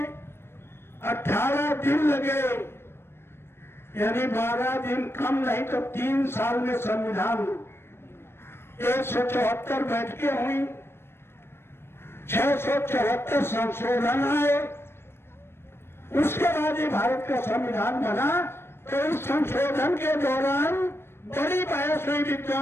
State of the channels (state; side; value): late; right; 0.12 ms